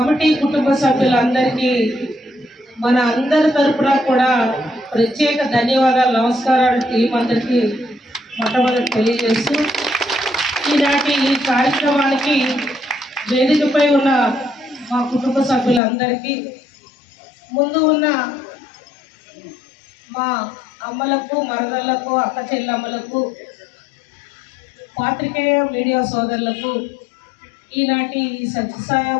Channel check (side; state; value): right; drops out; at 15.8 s